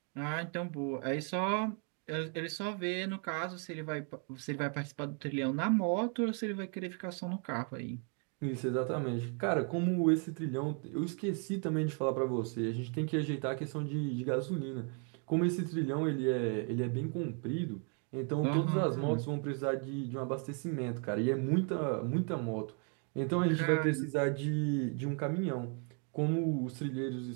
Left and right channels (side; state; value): left; quieter; 39.8 dB